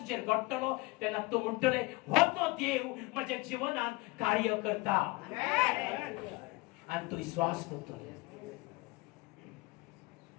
घडटलो तेन्ना तूं म्हणटले हो तो देव म्हज्या जिवनांत कार्य करता आनी तूं विश्वास करतले.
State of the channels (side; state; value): right; quieter; 24.4 dB